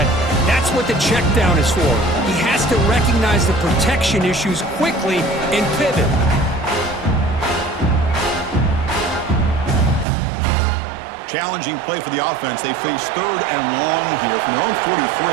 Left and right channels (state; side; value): drops out; left; at 10.1 s